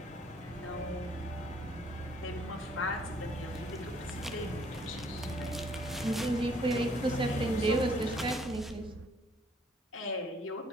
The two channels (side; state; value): both; normal; correlation 0.63